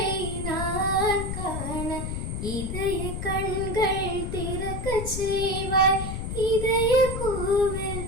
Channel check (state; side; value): noise; left; rumble, 4 dB below the sound